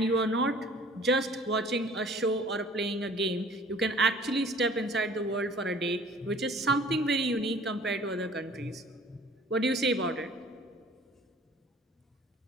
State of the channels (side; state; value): both; normal; correlation 0.51